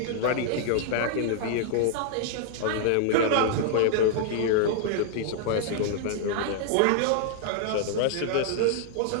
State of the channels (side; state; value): both; different; correlation -0.01